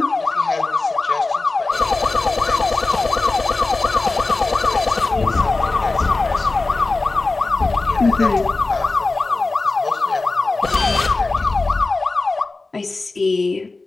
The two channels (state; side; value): quieter; right; 3.5 dB